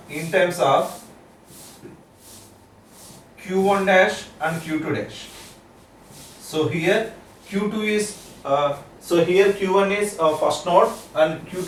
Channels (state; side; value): identical; both; correlation 1.00